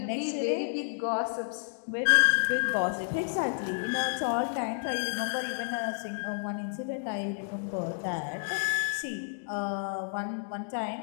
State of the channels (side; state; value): right; silent; digital silence